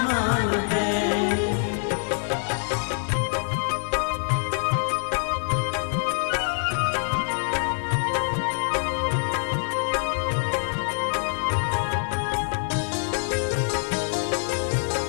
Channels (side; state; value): right; silent; 62 dB below the other